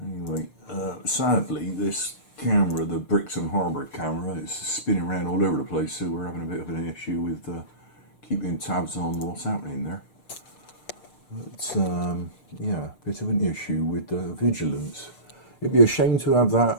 sadly this camera, the Brixton Harbour camera, is spinning around all over the place, so we're having a bit of an issue with keeping tabs on what's happening there. But yeah, a bit of an issue with Vigilance. It'd be a shame to have that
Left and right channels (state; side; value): late; right; 6.6 ms